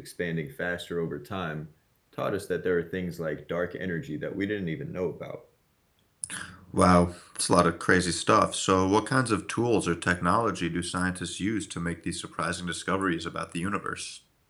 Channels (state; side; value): identical; both; correlation 1.00